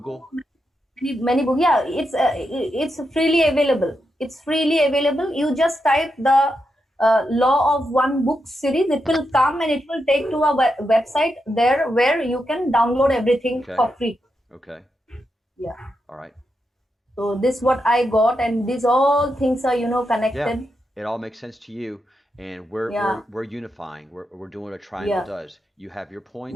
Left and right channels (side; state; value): both; normal; correlation 0.85